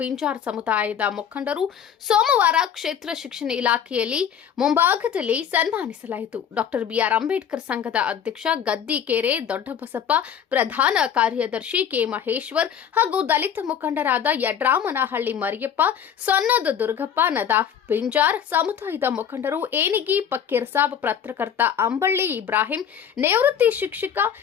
ಸಮುದಾಯದ ಮುಖಂಡರು ಸೋಮವಾರ ಕ್ಷೇತ್ರ ಶಿಕ್ಷಣ ಇಲಾಖೆಯಲ್ಲಿ ಮುಂಭಾಗದಲ್ಲಿ ಸನ್ಮಾನಿಸಲಾಯಿತು. ಡಾಕ್ಟರ್ ಬಿಆರ್ ಅಂಬೇಡ್ಕರ್ ಸಂಘದ ಅಧ್ಯಕ್ಷ ಗದ್ದಿಕೆರೆ ದೊಡ್ಡಬಸಪ್ಪ, ಪ್ರಧಾನ ಕಾರ್ಯದರ್ಶಿ ಕೆ ಮಹೇಶ್ವರ್ ಹಾಗೂ ದಲಿತ ಮುಖಂಡರಾದ ಯಡ್ರಾಮನಹಳ್ಳಿ ಮರಿಯಪ್ಪ, ಸೊನ್ನದ ದುರ್ಗಪ್ಪ, ನದಾಫ್ ಪಿಂಜಾರ್ ಸಮುದಾಯದ ಮುಖಂಡರು, ಏನಿಗಿ ಫಕೀರ್ ಸಾಬ್, ಪತ್ರಕರ್ತ ಅಂಬಳ್ಳಿ ಇಬ್ರಾಹಿಂ, ನಿವೃತ್ತಿ ಶಿಕ್ಷಕ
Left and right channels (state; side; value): quieter; right; 8.5 dB